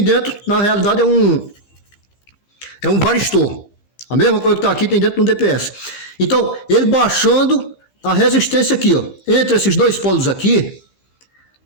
dentro, na realidade, é um varistor. A mesma coisa que está aqui tem dentro do DPS. Então, ele baixando a resistência aqui, ó, entre esses dois polos aqui.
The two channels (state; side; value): late; right; 15 ms